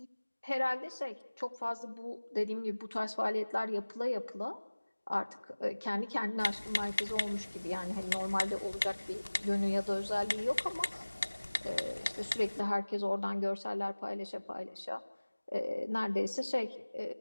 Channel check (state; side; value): inverted; both; correlation -1.00